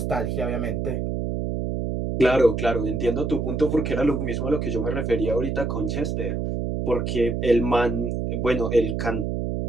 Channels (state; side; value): noise; right; hum, 1 dB below the sound